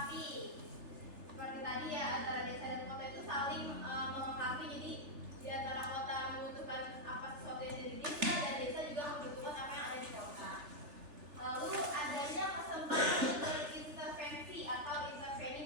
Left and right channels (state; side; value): late; left; 3.3 ms